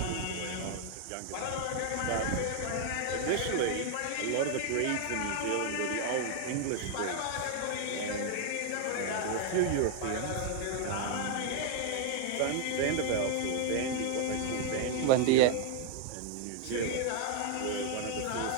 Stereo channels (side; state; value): both; different; correlation 0.00